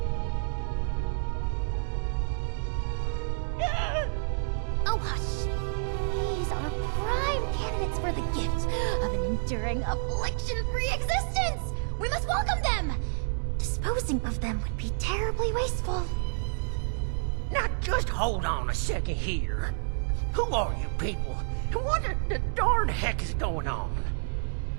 Oh, hush. These are prime candidates for the gift of an enduring affliction-free existence! We must welcome them! Disposing of them would be terribly wasteful. Now just hold on a second here. Who are you people? And what the darn heck is going on?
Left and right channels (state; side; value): silent; left; digital silence